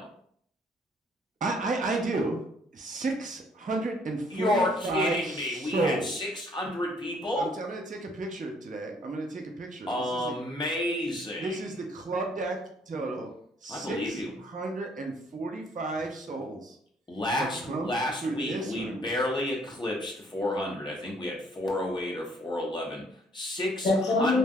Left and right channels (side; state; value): both; normal; correlation 0.63